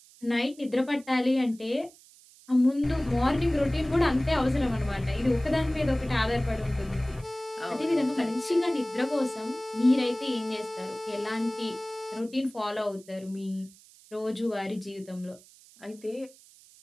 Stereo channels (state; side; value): noise; right; hiss, 24 dB below the sound